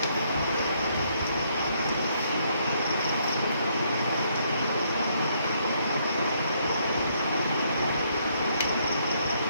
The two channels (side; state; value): both; inverted; correlation -0.71